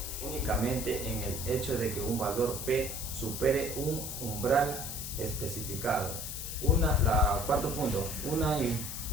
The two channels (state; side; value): noise; left; hiss, 6 dB below the sound